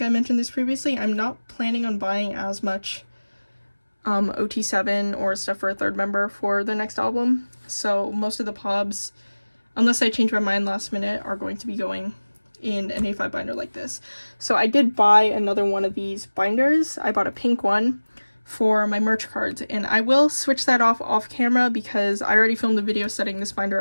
I mentioned this previously, I'm not planning on buying as much OT7 or stuff for a third member for the next album. So most of the pobs, unless I change my mind last minute, are going to be going in an A5 binder like this. So I did buy another one of these binders. I bought a pink one for my merch cards, and I will switch that off camera because I already filmed a video setting this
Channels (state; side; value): inverted; both; correlation -1.00